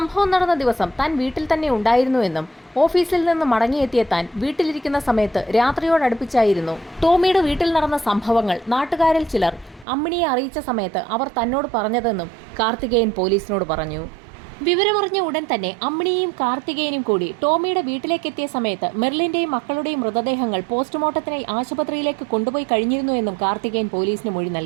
നടന്ന ദിവസം താൻ വീട്ടിൽ തന്നെ ഉണ്ടായിരുന്നുവെന്നും ഓഫീസിൽ നിന്ന് മടങ്ങിയെത്തിയ താൻ വീട്ടിലിരിക്കുന്ന സമയത്ത് രാത്രിയോടടുപ്പിച്ചായിരുന്നു ടോമിയുടെ വീട്ടിൽ നടന്ന സംഭവങ്ങൾ നാട്ടുകാരിൽ ചിലർ അമ്മിണിയെ അറിയിച്ച സമയത്ത് അവർ തന്നോട് പറഞ്ഞതെന്നും കാർത്തികേയൻ പോലീസിനോട് പറഞ്ഞു. വിവരമറിഞ്ഞ ഉടൻ തന്നെ അമ്മിണിയും കാർത്തികേയനും കൂടി ടോമിയുടെ വീട്ടിലേക്കെത്തിയ സമയത്ത് മെർലിന്റെയും മക്കളുടെയും മൃതദേഹങ്ങൾ പോസ്റ്റ്മോർട്ടത്തിനായി ആശുപത്രിയിലേക്ക് കൊണ്ടുപോയി കഴിഞ്ഞിരുന്നു എന്നും കാർത്തികേയൻ പോലീസിന് മൊഴി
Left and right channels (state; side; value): drops out; left; at 9.9 s